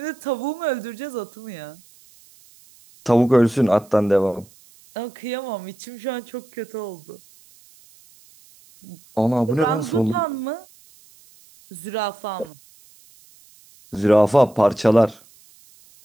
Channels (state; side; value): noise; right; hiss, 27 dB below the sound